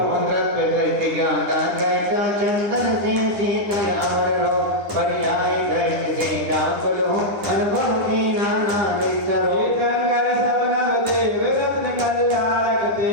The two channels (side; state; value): left; late; 9.8 ms